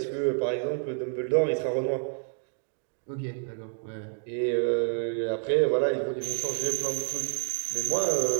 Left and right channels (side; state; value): left; silent; 59 dB below the other